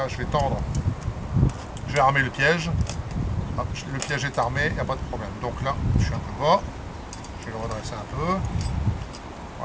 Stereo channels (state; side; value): identical; both; correlation 1.00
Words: je vais tendre, je vais armer le piège. Hop, le piège est armé, il n'y a pas de problème. Donc là, je suis un peu bas, je vais le redresser un peu.